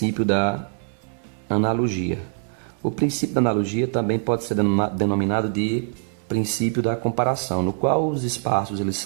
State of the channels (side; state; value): left; silent; 63 dB below the other